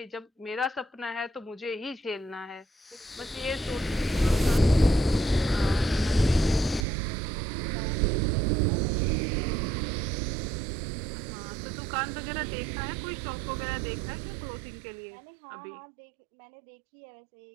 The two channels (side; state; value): left; drops out; at 6.9 s